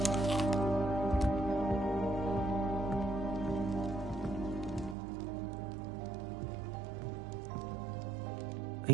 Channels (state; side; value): drops out; left; at 5.0 s